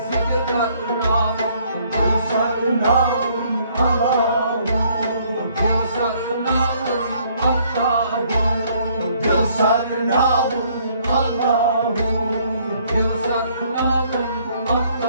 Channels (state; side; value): inverted; both; correlation -0.64